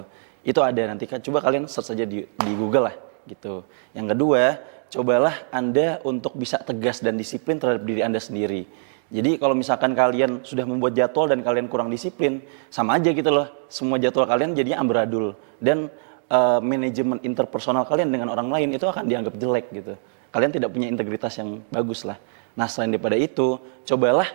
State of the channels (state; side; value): silent; left; digital silence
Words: loh. Itu ada, nanti coba kalian search saja di Google lah gitu. Yang kedua, cobalah Anda untuk bisa tegas dan disiplin terhadap diri Anda sendiri. Jadi kalau misalkan kalian sudah membuat jadwal dan kalian kurang disiplin, sama aja gitu loh. Semua jadwal kalian jadinya amburadul. Dan manajemen interpersonal kalian dengan orang lain itu akan dianggap jelek gitu. Kalian tidak punya integritas yang bagus lah. Nah selain daripada itu, cobalah